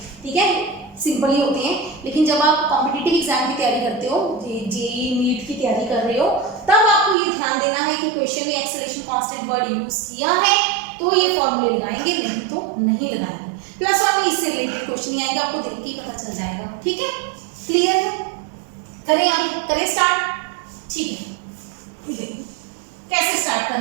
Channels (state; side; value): drops out; left; at 7.2 s